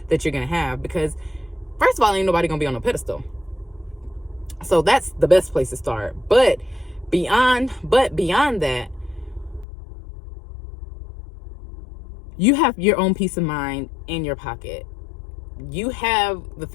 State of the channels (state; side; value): drops out; right; at 9.7 s